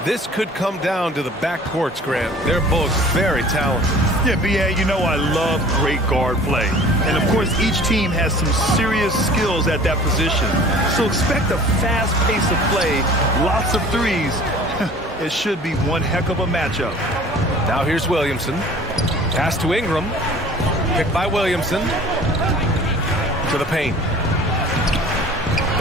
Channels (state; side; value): normal; both; correlation 0.47